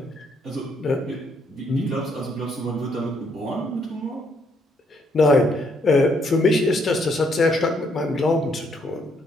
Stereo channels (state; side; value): normal; both; correlation 0.71